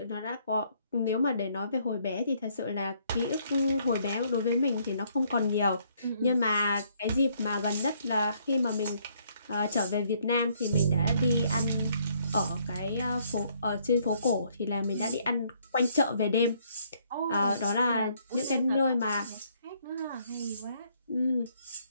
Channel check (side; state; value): both; inverted; correlation -0.67